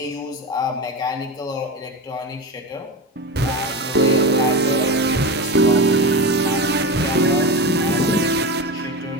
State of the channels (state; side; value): normal; both; correlation 0.22